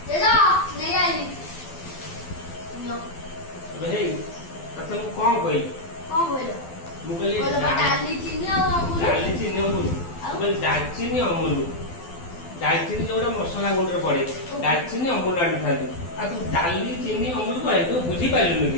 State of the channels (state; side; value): late; right; 12 ms